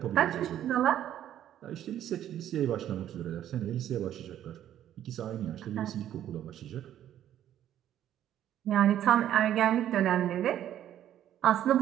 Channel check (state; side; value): quieter; left; 11.3 dB